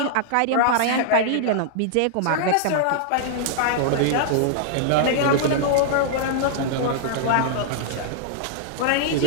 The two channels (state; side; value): different; both; correlation -0.01